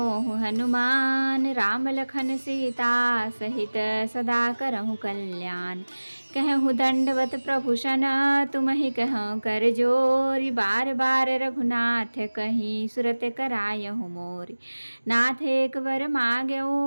हनुमान। राम लखन सीता सहित सदा करहु कल्याण। कहूँ दंडवत प्रभु सन, तुम ही कहूँ कर जोरी। बार बार रघुनाथ कहीं सुरत करायहु मोरी। नाथ एक वर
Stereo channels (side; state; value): both; inverted; correlation -1.00